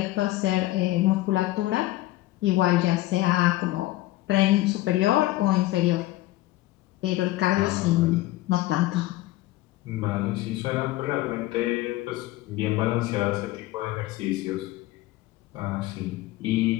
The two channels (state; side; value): quieter; right; 17.1 dB